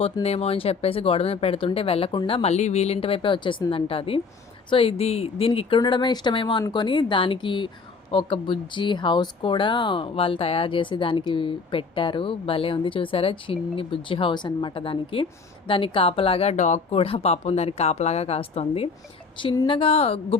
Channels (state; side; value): quieter; right; 4.7 dB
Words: అని చెప్పేసి గోడ మీద పెడుతుంటే వెళ్ళకుండా మళ్ళీ వీళ్ళింటి వైపే వచ్చేసిందంట అది. సో దీనికి ఇక్కడ ఉండడమే ఇష్టమేమో అనుకొని దానికి ఒక బుజ్జి హౌస్ కూడా వాళ్ళు తయారు చేసి దానికి పెట్టారు. భలే ఉంది చూసారా, చిన్ని బుజ్జి హౌస్ అనమాట. దానికి కాపలాగా డాగ్ కూడా పాపం దానికి కాపలాగా కాస్తుంది. చిన్నగా